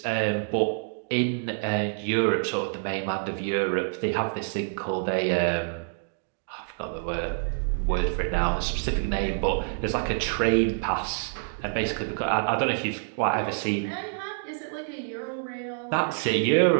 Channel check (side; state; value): left; silent; digital silence